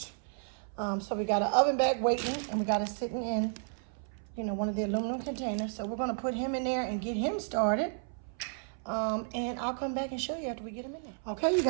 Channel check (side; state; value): left; silent; 56 dB below the other